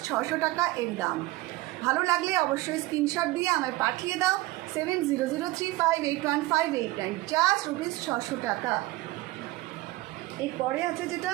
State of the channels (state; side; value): quieter; left; 19.1 dB